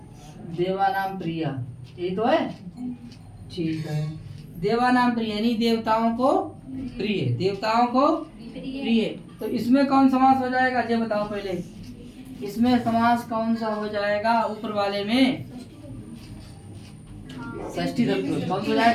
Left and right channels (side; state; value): both; identical; correlation 1.00